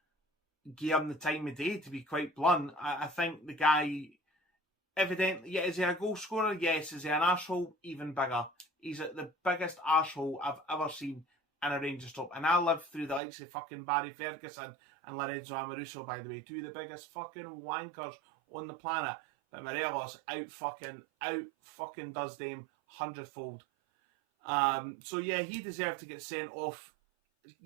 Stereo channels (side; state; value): left; drops out; at 13.2 s